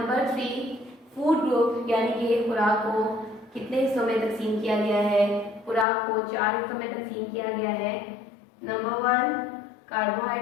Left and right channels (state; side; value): drops out; right; at 5.9 s